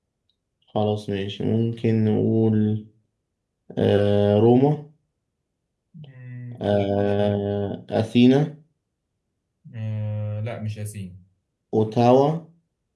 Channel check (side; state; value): both; identical; correlation 1.00